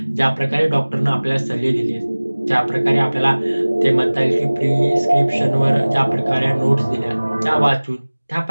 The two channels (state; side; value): inverted; both; correlation -1.00